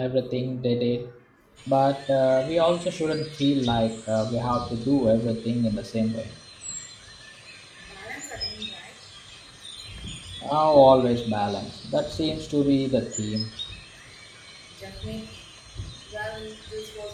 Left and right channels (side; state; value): both; identical; correlation 1.00